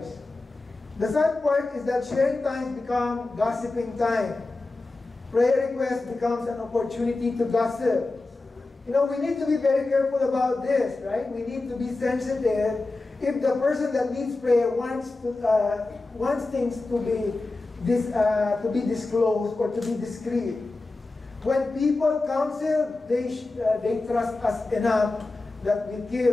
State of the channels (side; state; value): right; quieter; 3.2 dB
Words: The sad part is that sharing times become gossiping time. Prayer request becomes an opportunity to gossip. We need to be very careful about this, right? We need to be sensitive. If the person that needs prayer wants things to be disclosed or to be discreet. When people counsel, they trust us enough that we